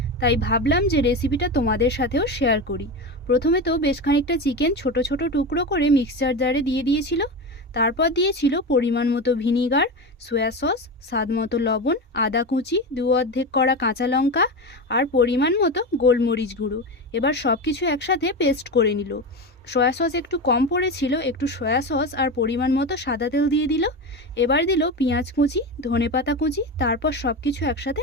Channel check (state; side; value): normal; both; correlation 0.21